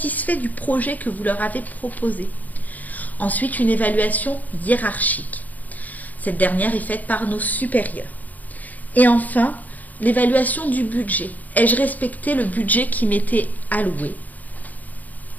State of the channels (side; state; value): right; late; 0.080 ms